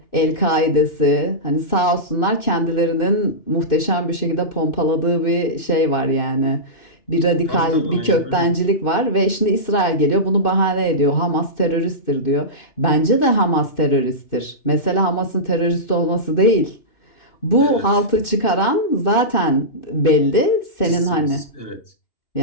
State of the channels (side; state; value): right; late; 2.6 ms